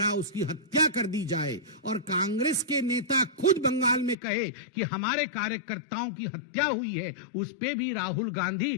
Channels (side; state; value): right; drops out; at 4.2 s